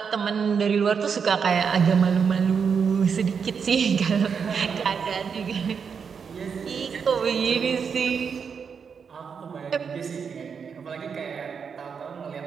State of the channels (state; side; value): quieter; left; 6.3 dB